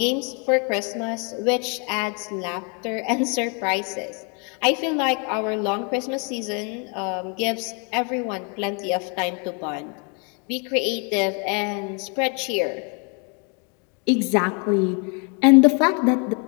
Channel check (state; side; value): quieter; right; 36.4 dB